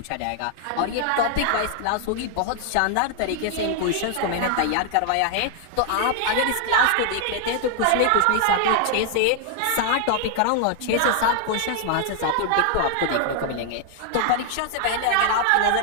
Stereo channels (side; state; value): both; different; correlation 0.00